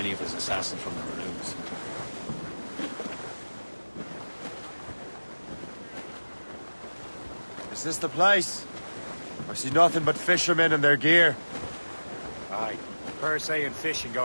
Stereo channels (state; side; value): inverted; both; correlation -1.00